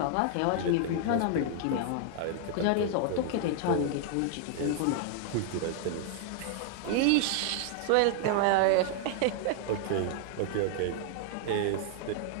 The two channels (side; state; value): both; different; correlation 0.00